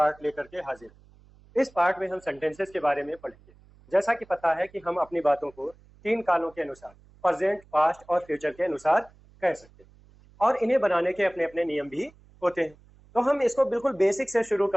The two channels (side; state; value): right; noise; hum, 27 dB below the sound